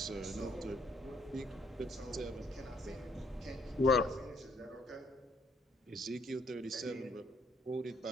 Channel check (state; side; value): normal; both; correlation 0.67